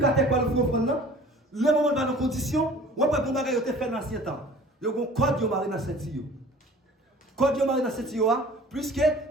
pour le offrande, le moment dans nos conditions, on va pas faire fait dans l'ancien temps. Il y a un code de marine dans cette tio. Code de marine dans cette tio, puisque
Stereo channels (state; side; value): normal; both; correlation 0.47